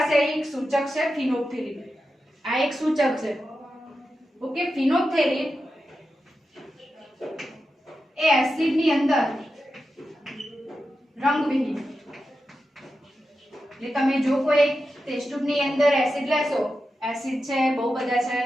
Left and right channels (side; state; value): both; normal; correlation 0.90